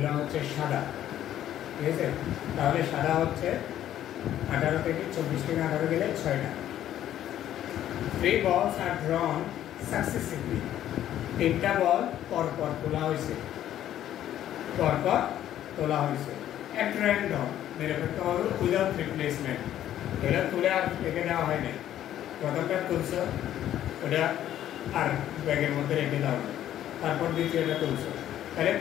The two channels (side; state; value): right; quieter; 11.8 dB